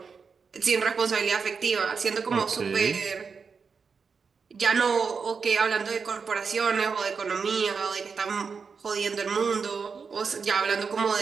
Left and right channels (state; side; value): quieter; left; 5.5 dB